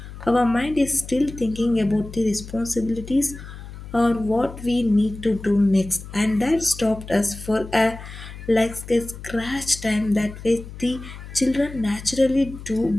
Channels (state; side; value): noise; left; hum, 13 dB below the sound